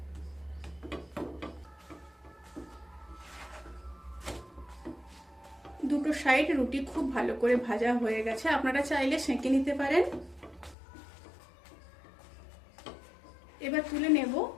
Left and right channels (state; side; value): drops out; right; at 10.8 s